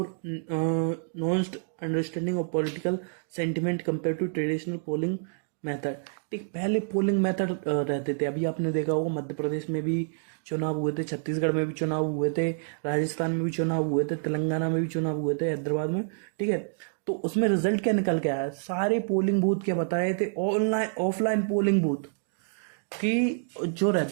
nuanced understanding of political sentiment compare to traditional polling method. ठीक, पहले polling method रहते थे, अभी आपने देखा होगा मध्य प्रदेश में भी चुनाव हुए थे, छत्तीसगढ़ में भी चुनाव हुए थे, राजस्थान में भी चुनाव हुए थे, तेलंगाना में भी चुनाव हुए थे, हैदराबाद में। ठीक है, तो उसमें रिजल्ट क्या निकल के आया, सारे पोलिंग बूथ क्या बता रहे थे, ऑनलाइन ऑफलाइन पोलिंग बूथ कि जो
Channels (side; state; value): left; silent; digital silence